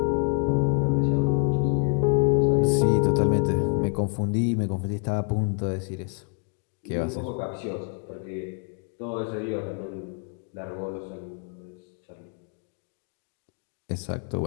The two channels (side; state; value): right; quieter; 39.8 dB